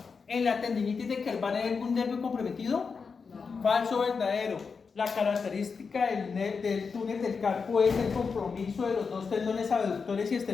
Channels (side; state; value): right; quieter; 5.3 dB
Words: En la tendinitis de Kerbal hay algún nervio comprometido. Falso, verdadero. La característica del túnel del Carpo es el compromiso de los 2 tendones abductores y